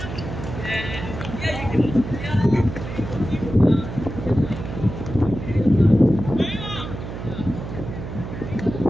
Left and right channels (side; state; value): right; noise; hum, 8 dB below the sound